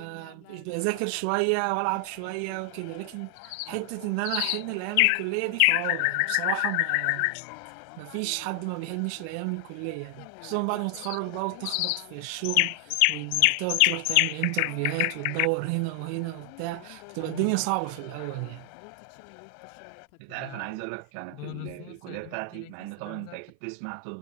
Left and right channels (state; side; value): different; both; correlation 0.00